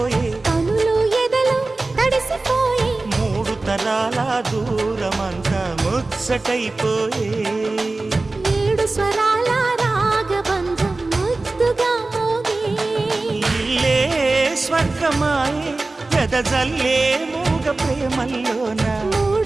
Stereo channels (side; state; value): left; quieter; 3.3 dB